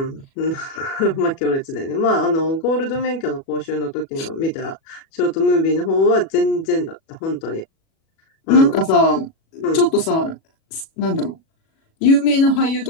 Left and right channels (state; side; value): late; right; 37 ms